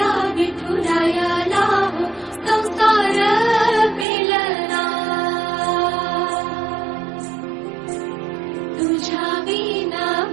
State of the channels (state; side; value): drops out; left; at 4.0 s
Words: विठुरायाला हो संसार पेलना, तुझ्या विना